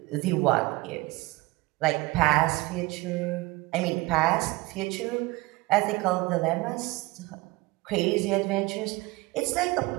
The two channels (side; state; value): left; quieter; 22.3 dB